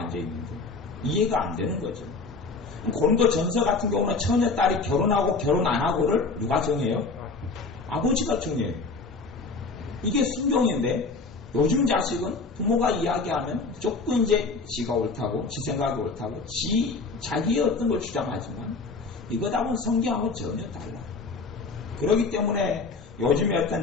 있는데 이해가 안 되는 거죠. 고린도 전서 같은 경우는 처녀 딸이 결혼하고 결혼 안 하고를 누가 정해요? 아버지가 정해요. 이게 순종인데 요즘 자식은 부모가 이야기하면 무조건 이제 지가 옳다고, 지 생각이 옳다고, 자기의 어떤 걸 주장하지만 이거하고는 성경하고 전혀 달라요. 그렇기 때문에 요즘에 어떤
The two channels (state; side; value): quieter; right; 4.1 dB